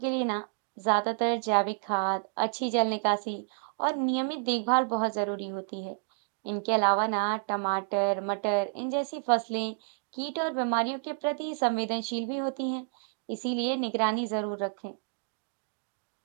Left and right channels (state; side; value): silent; left; digital silence